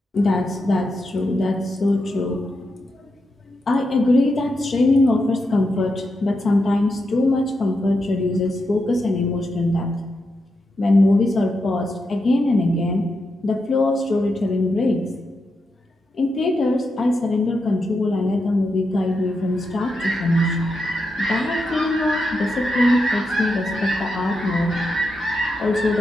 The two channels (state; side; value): normal; both; correlation 0.85